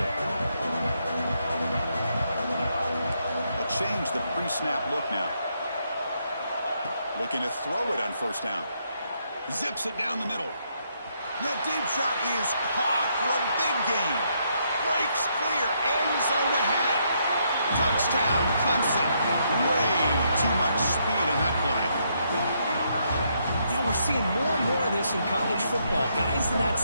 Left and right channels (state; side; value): inverted; both; correlation -0.75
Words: They'll change the pre-snap look now. Looking to throw it on first down. Zips it down the middle. That deep shot is caught for a big gain. Breaks clear. End zone ahead. Touchdown, Clemson. Way too much speed on that play. Yeah, we're seeing more and more of this in college football. Guys in that